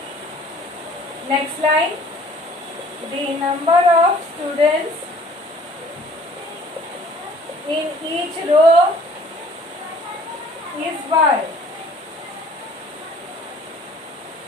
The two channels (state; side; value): normal; both; correlation 0.53